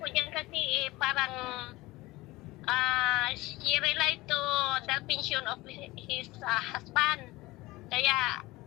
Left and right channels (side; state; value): right; quieter; 20.1 dB